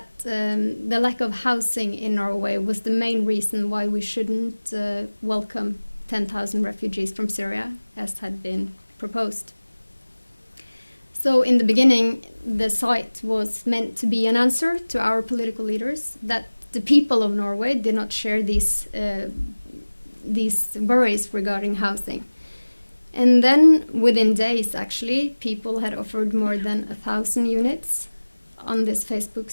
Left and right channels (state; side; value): inverted; both; correlation -1.00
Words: the lack of housing in Norway was the main reason why we shouldn't welcome 10,000 refugees from Syria, as had been proposed. So in the beginning, the site was meant to be an answer to our political leaders that the people of Norway did not share these worries regarding housing. And then within days, actually, people had offered more than 1,000 units on this Facebook